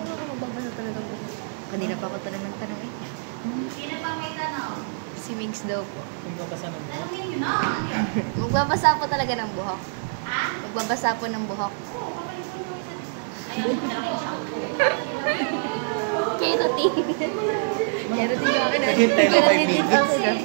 nga kung magbabasa talaga ng buhok. Kanina pa ako tanong ng tanong eh. Sino pa may tanong? Si Migs daw po. Kung kapasa ng Tanungin nyo na. Ano yun? Magbabasa po talaga ng buhok. Ha? Magbabasa Magbabasa po ng buhok. Ayaw mo talaga yung shampoo. Keratin. Keratin yung akin. Hintay na 5 minutes.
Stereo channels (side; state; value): left; silent; 62 dB below the other